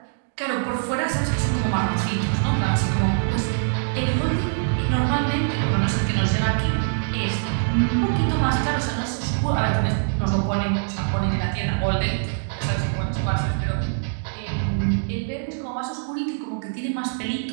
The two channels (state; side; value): silent; left; digital silence